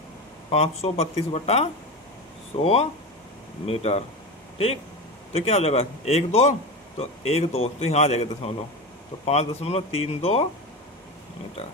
532/100 मीटर। ठीक, तो क्या हो जाएगा, 1 2 तो 1 2 तो यहाँ आ जाएगा दशमलव, तो 5.32 मीटर।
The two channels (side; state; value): both; normal; correlation 0.23